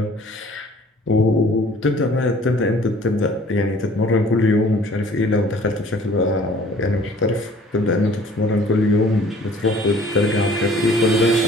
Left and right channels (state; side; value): normal; both; correlation 0.53